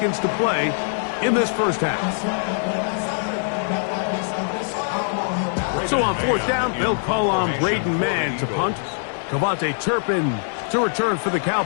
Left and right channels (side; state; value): right; silent; digital silence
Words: to play in this first half. So on 4th down, they'll call on Braden Mann to punt. Cavante Turpin to return for the